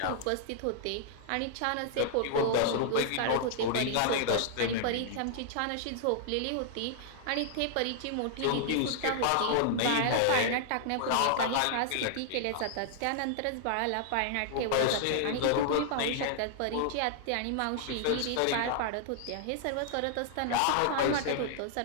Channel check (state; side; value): different; both; correlation -0.01